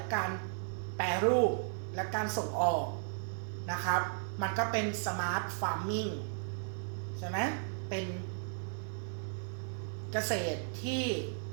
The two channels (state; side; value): silent; left; 54 dB below the other